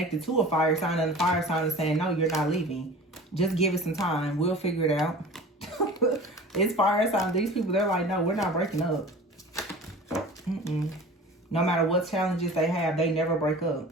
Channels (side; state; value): both; normal; correlation 0.40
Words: to a fire sign, and the fire sign is saying, no, you're not leaving. Just give it some time. We'll figure it out. It's fire sign. These people, they're like, no, we're not breaking up. No matter what challenges they have, they never break up.